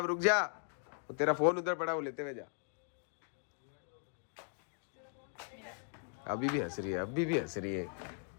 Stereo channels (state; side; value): silent; right; 52 dB below the other